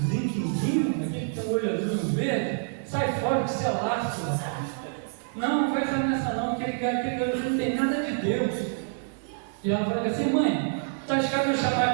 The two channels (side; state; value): left; silent; digital silence